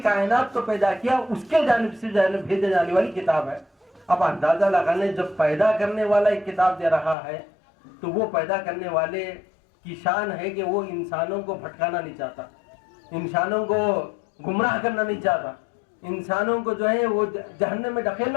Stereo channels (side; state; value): right; drops out; at 7.2 s